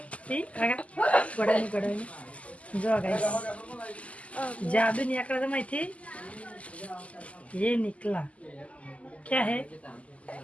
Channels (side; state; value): right; late; 0.066 ms